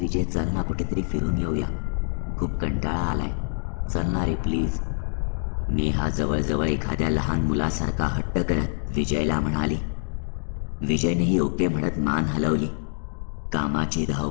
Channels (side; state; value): right; silent; 61 dB below the other